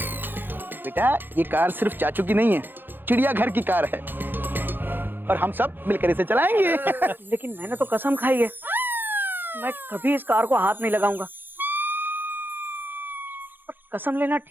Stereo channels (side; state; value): left; late; 0.096 ms